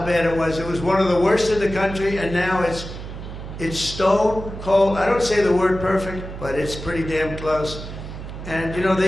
bad it was. It was one of the worst in the country, and now it's stone cold. I don't say the word perfect, but it's pretty damn close. And you know,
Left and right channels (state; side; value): noise; right; hum, 10 dB below the sound